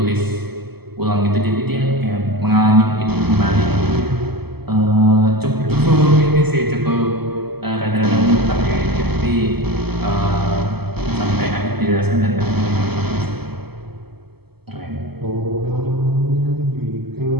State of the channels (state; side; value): late; left; 0.97 ms